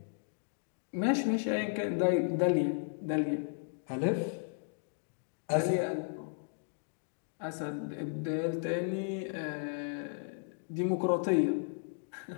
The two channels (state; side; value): silent; right; digital silence